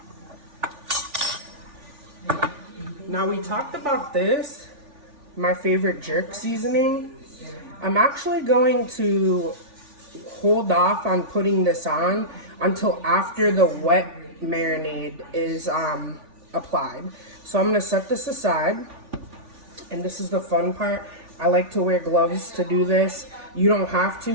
Now we talked about this, my favorite jerk seasoning. I'm actually going to hold off on putting this on until after the wet marinade is applied. So I'm gonna set this aside, and this is the fun part. I like to wear gloves to do this. You don't have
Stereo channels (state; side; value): late; left; 3.5 ms